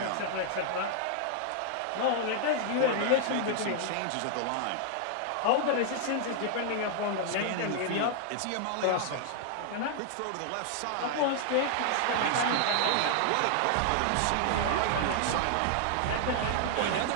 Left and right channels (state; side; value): different; both; correlation -0.01